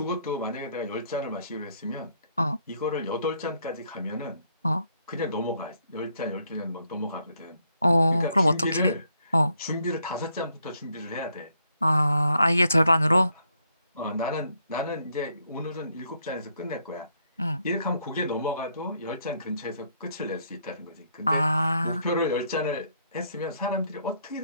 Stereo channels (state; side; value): inverted; both; correlation -0.72